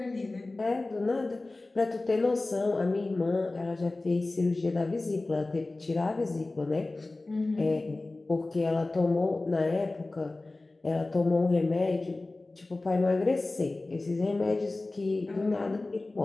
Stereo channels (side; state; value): right; quieter; 3.1 dB